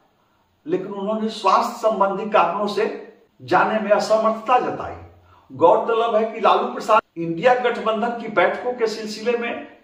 लेकिन उन्होंने स्वास्थ्य संबंधी कारणों से जाने में असमर्थता जताई। गौरतलब है कि लालू प्रसाद इंडिया गठबंधन की बैठकों के सिलसिले में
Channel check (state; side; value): identical; both; correlation 1.00